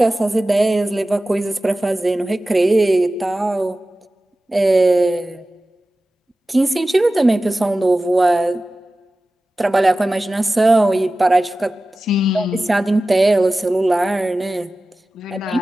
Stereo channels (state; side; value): normal; both; correlation 0.96